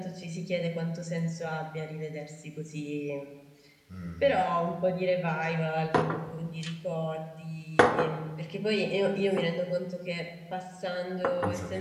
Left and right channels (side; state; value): both; identical; correlation 1.00